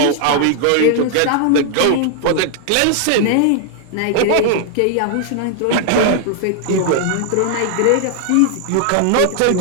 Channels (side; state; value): both; different; correlation 0.00